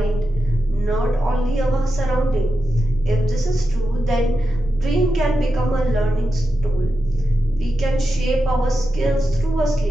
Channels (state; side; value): normal; both; correlation 0.89